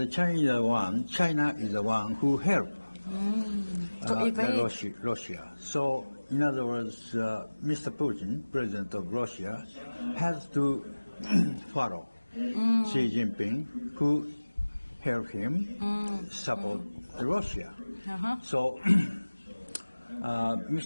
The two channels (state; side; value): inverted; both; correlation -1.00